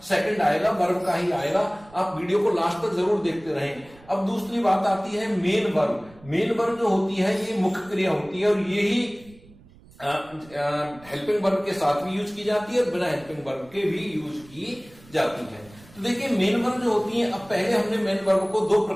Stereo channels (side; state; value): right; noise; rumble, 24 dB below the sound